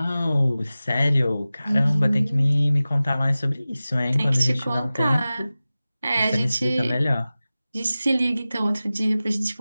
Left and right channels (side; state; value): both; inverted; correlation -0.96